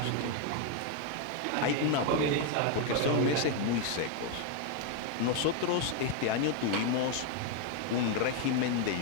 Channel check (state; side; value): different; both; correlation 0.01